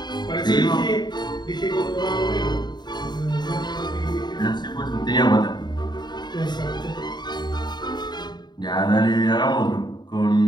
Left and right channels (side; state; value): right; late; 0.21 ms